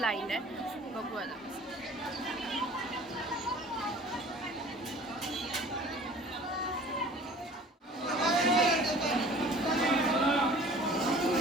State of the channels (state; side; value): normal; both; correlation 0.47